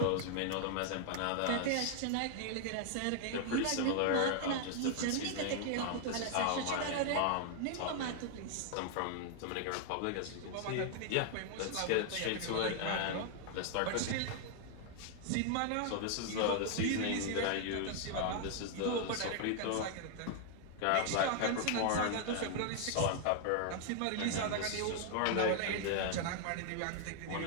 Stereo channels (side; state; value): both; different; correlation 0.00